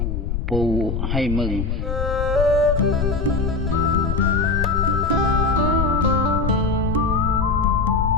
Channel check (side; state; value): left; noise; rumble, 1 dB below the sound